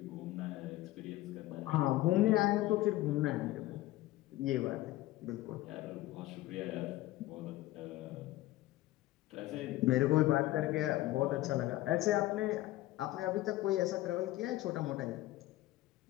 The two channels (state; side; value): quieter; right; 16.6 dB